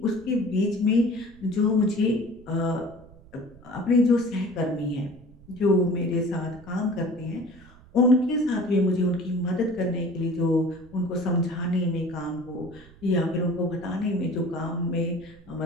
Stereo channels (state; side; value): noise; right; rumble, 23 dB below the sound